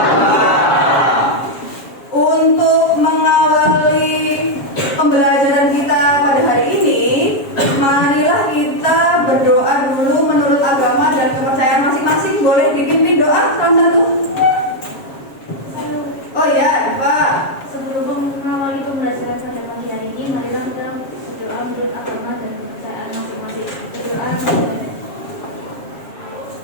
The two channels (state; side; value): late; right; 7.3 ms